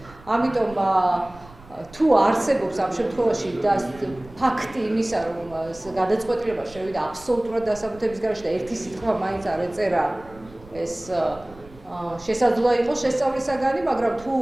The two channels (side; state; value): right; noise; rumble, 21 dB below the sound